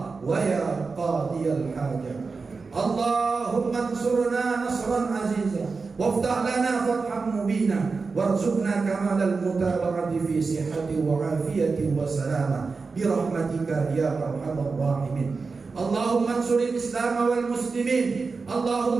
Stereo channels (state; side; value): quieter; left; 4.4 dB